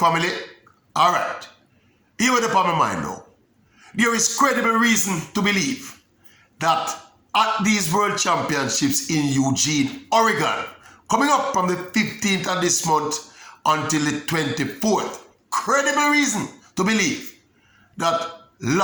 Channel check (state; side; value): identical; both; correlation 1.00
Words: Alright. Here with the my mind now. There is credible reason to believe that at these World Championships in Eugene, Oregon, coming up from the 15th of this month until the 24th, credible reason to believe that